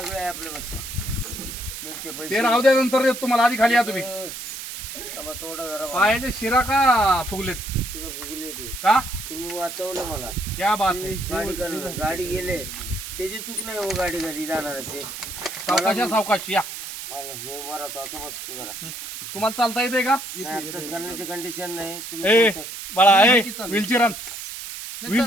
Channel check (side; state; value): right; noise; hiss, 9 dB below the sound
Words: आहे आपल्या बस मिळते ते पैसे. राहू द्या नंतर देतो तुम्हाला. आधी खाली या तुम्ही. तबा थोडा जरा पायाचे शिरा का फुगलेत शिरं फुगले ते. का? तुम्ही वाचवलं मला. क्या बात आहे. गाडी गेले त्याची चूक नाही हो. गाडी घरी जाणारचे. सावकाश या. मला मी उभा राहतो असं बसतो जरा. तुम्हाला चालता येते का? आताच करण्याची कंडिशन नाही. तुम्ही ए कोणतं बाळा ए व्हीलचेअर आण.